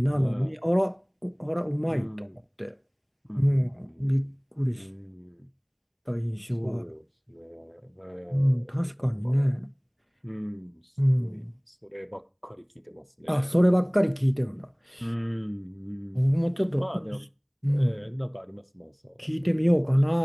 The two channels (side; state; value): both; identical; correlation 1.00